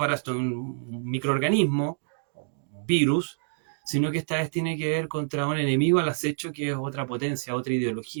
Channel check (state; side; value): silent; left; digital silence